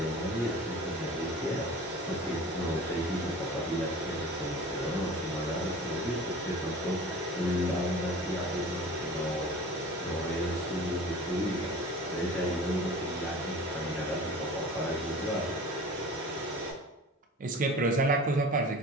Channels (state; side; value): normal; both; correlation 0.40